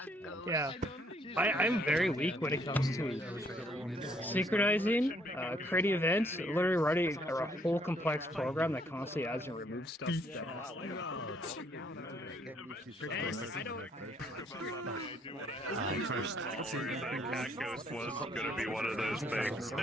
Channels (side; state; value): both; normal; correlation 0.67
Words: Yeah, I'm very weak when it comes to synchronizing, creating events, literally writing a whole complex program that constantly adds and removes stuff. Cat Ghost was going to be one of those things.